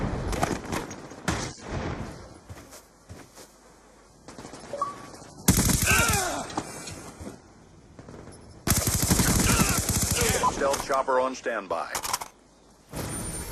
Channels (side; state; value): both; identical; correlation 1.00